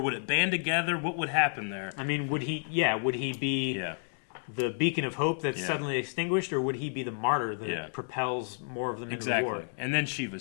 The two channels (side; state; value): right; silent; 57 dB below the other